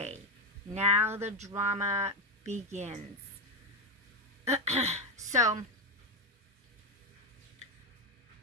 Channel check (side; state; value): both; normal; correlation 0.10